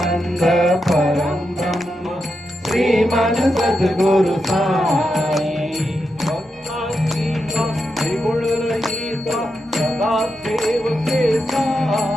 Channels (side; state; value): both; normal; correlation 0.86